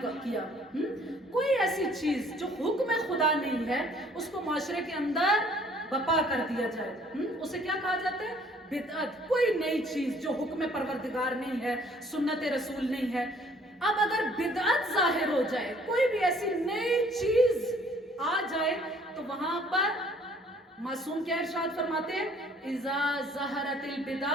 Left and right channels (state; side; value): normal; both; correlation 0.58